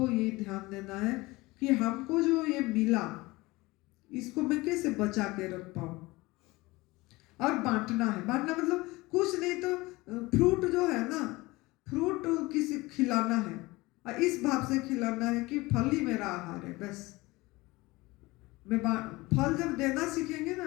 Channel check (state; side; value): quieter; right; 21.5 dB